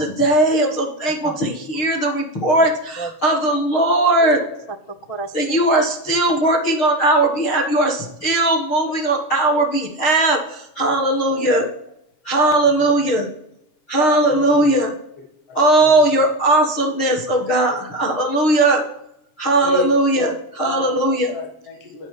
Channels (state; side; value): late; right; 6.5 ms